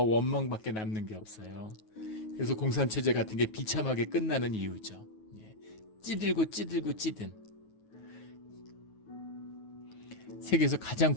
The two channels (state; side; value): late; right; 9.3 ms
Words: 원망밖에 남는 게 없어요. 그래서 공산체제 같은 게 비참하게 끝나는 이유죠. 찌들고 찌든. 세계에서 가장